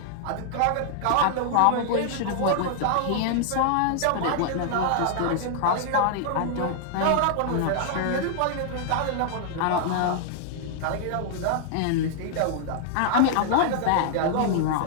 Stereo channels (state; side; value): different; both; correlation -0.01